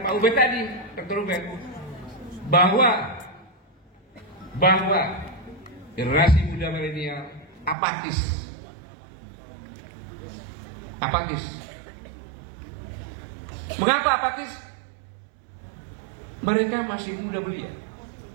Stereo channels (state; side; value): drops out; left; at 7.8 s